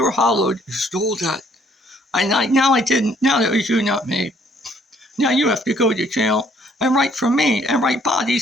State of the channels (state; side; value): normal; both; correlation 0.64